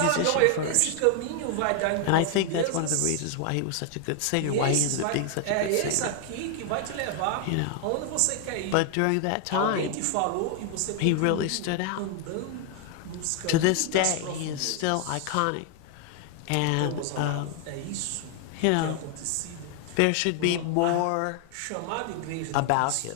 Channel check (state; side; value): different; both; correlation 0.00